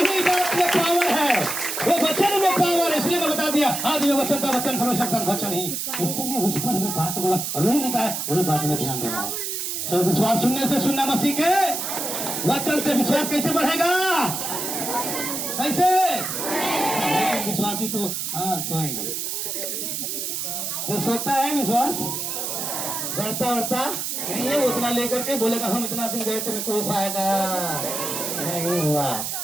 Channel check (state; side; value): noise; right; hiss, 3 dB below the sound